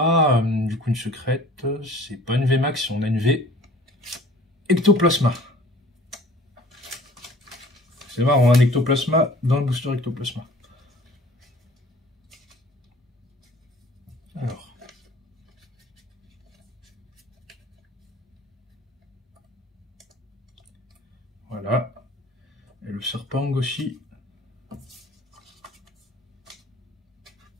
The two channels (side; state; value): both; normal; correlation 0.49